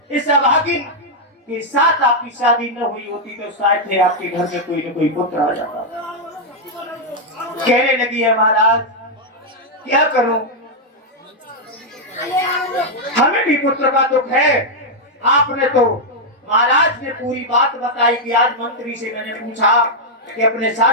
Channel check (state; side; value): normal; both; correlation -0.02